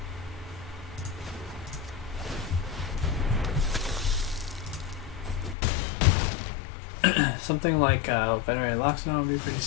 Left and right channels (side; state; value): right; drops out; at 5.6 s